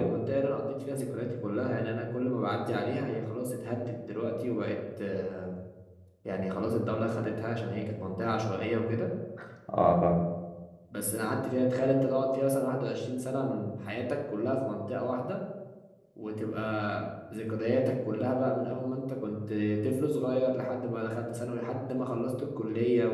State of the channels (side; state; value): both; identical; correlation 1.00